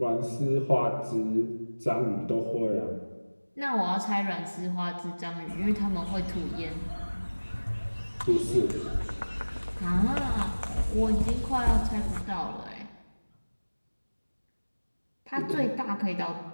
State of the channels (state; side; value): inverted; both; correlation -1.00